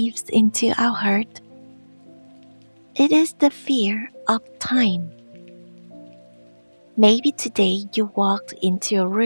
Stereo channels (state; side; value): inverted; both; correlation -1.00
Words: into our heart. It is the fear of time. Maybe today you walked into a